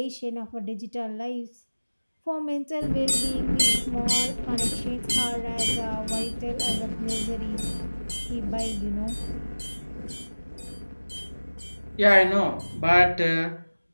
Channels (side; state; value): both; inverted; correlation -1.00